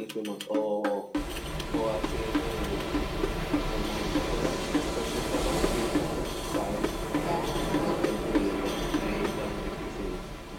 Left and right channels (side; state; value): both; identical; correlation 1.00